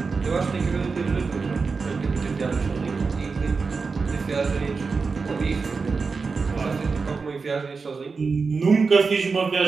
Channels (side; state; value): left; quieter; 4.7 dB